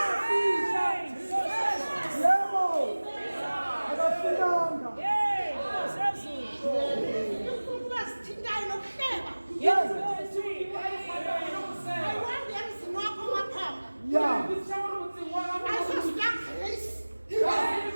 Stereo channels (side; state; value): both; inverted; correlation -1.00